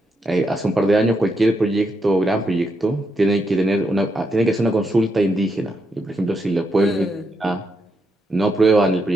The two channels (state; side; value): normal; both; correlation 0.81